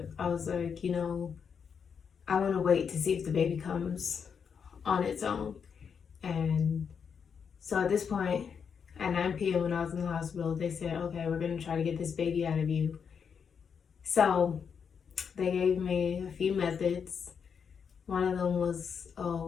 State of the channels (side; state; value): right; quieter; 6.7 dB